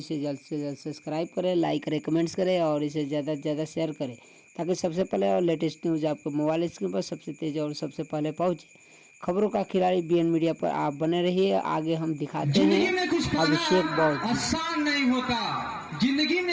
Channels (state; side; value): identical; both; correlation 1.00